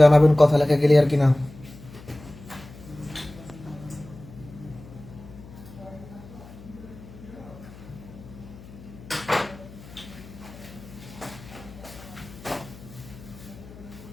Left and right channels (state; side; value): noise; left; hum, 18 dB below the sound